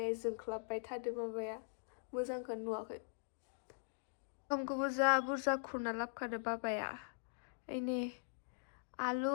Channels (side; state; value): right; silent; digital silence